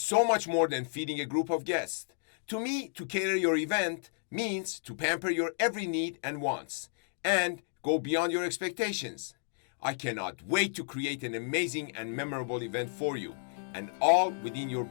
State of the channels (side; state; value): right; silent; digital silence